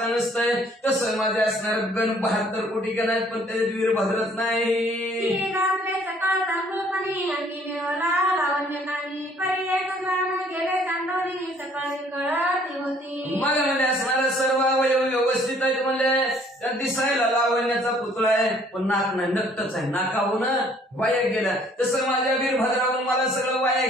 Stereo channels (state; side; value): normal; both; correlation 0.59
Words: नसतंय तसं माझे असणार गण 72 कोटी गण आहेत पण त्याच्यात वीरभद्रच नाही सकाळ तांदूळपणी अंगी देवला लावण्य नाही परी एक ग्राम गेले चांदोरी सकाळी कळती होती मला म्हणजे असणारा सर्व अवयव व्यवस्थित आहेत म्हणजे त्या दिसायला लावण्याचा पुतळा आहे पण नाक नाही नक्तच आहे नाकाहून वाया गेला तसं माझ्या वीरभद्रावरून मला सगळं वाया